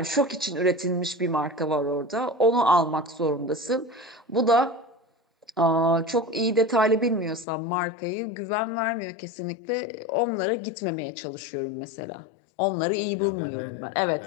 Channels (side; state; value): right; drops out; at 7.5 s